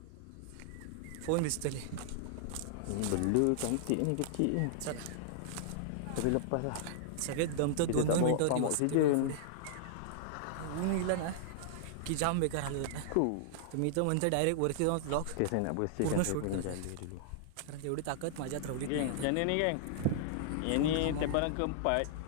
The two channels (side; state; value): both; different; correlation -0.01